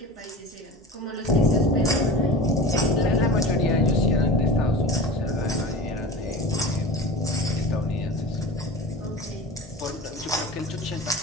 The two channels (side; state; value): both; normal; correlation 0.33